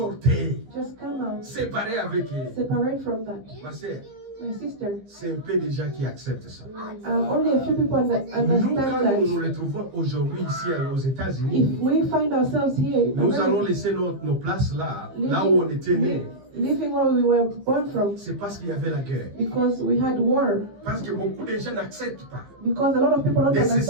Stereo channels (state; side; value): late; left; 15 ms